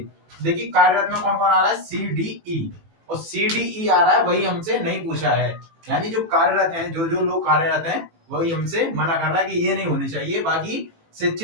देखिए, कार्यरत में कौन कौन आ रहा है, सी डी ई, और सी डी ई आ रहा है, वही हमसे नहीं पूछा है। यानी जो कार्यरत हैं, जो लोग कार्यरत हैं, वही हमसे मना कर रहा है कि ये नहीं होनी चाहिए, बाकी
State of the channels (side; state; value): left; late; 18 ms